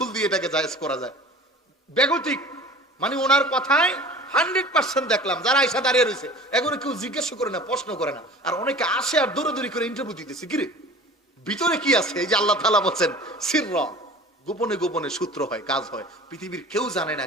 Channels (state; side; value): normal; both; correlation 0.41